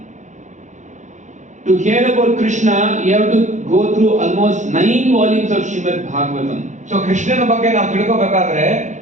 to hear about Krishna, you have to go through almost 9 volumes of Srimad Bhagavatam. So ಕೃಷ್ಣನ ಬಗ್ಗೆ ನಾವು ತಿಳ್ಕೋಬೇಕಾದ್ರೆ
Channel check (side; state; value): left; late; 0.35 ms